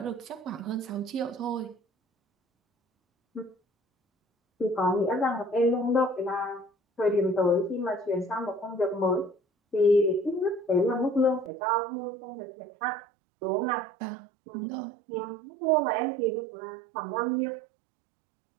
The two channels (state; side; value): drops out; left; at 11.5 s